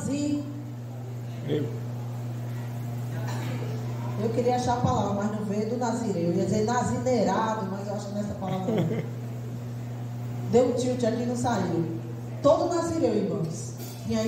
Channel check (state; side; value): identical; both; correlation 1.00